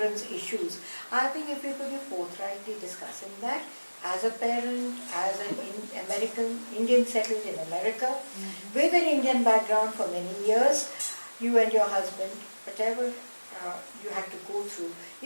issues. I think if you could be forthrightly discussing that as a parent, as an Indian settled in America, with an Indian background for many years, you and your husband, whatever you had to go through,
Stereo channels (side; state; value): both; inverted; correlation -1.00